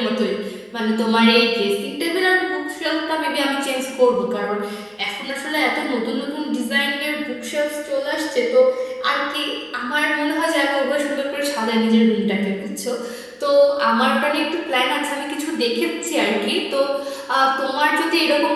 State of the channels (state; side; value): identical; both; correlation 1.00